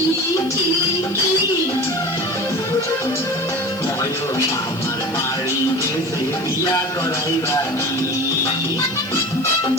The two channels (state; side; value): noise; left; hiss, 23 dB below the sound